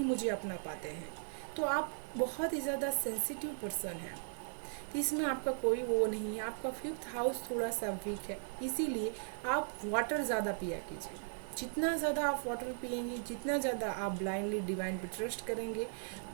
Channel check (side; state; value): left; silent; digital silence